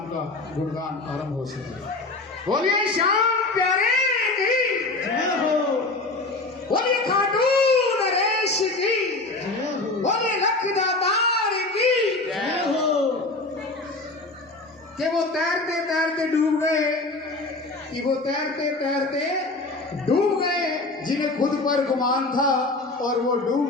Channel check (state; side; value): quieter; right; 3.2 dB